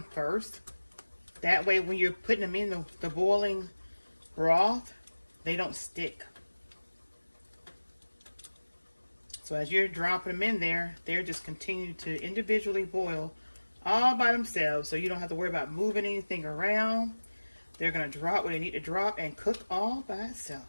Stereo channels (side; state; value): both; inverted; correlation -1.00